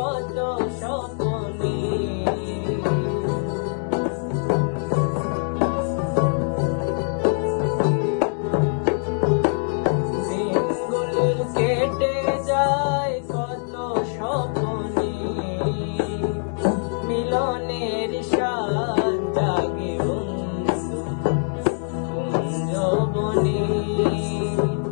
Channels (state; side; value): silent; right; digital silence